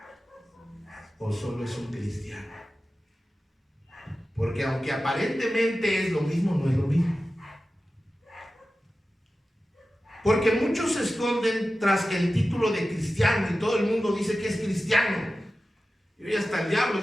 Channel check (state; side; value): normal; both; correlation 0.94